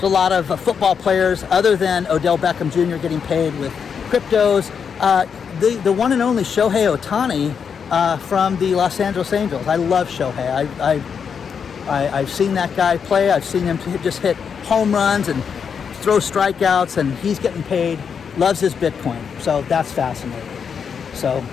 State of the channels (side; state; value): right; quieter; 6.7 dB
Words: a lot of football players, other than Odell Beckham Jr. getting paid with cryptos. The one and only Shohei Ohtani from the Los Angeles Angels. I love Shohei. I've seen that guy play. I've seen him just hit home runs and throw strikeouts, and he's getting paid. Loves his Bitcoin. So that's fascinating. So